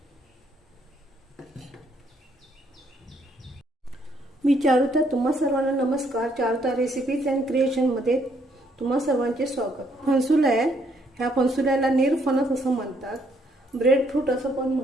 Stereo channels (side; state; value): both; normal; correlation 0.69